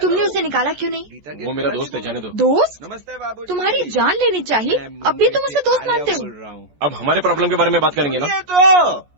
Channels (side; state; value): left; late; 14 ms